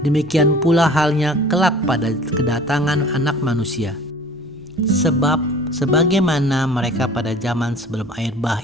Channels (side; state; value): both; normal; correlation 0.45